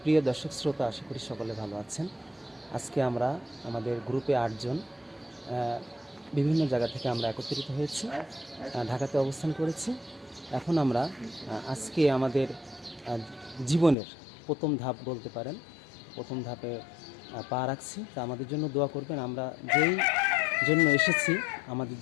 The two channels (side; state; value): right; drops out; at 14.0 s